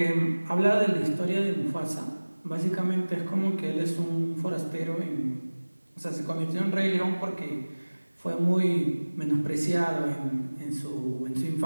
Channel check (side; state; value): both; inverted; correlation -1.00